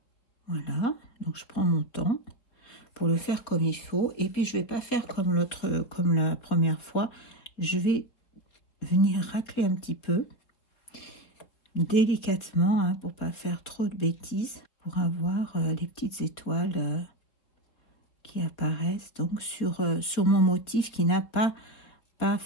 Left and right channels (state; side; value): late; right; 4.2 ms